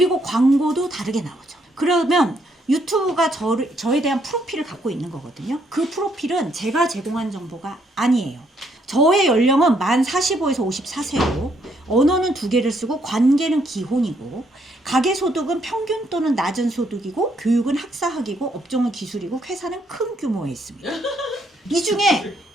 광고도 다르게 나오죠. 그러면 유튜브가 저에 대한 프로필을 갖고 있는 거거든요. 그 프로필은 제가 제공한 정보가 아니에요. 저의 연령은 만 45에서 54세고 언어는 2개를 쓰고 관계는 기혼이고 가계소득은 평균 또는 낮은 소득이고 교육은 학사학이고 업종은 기술이고 회사는 큰 규모에 있습니다. 이 중에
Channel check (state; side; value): normal; both; correlation 0.71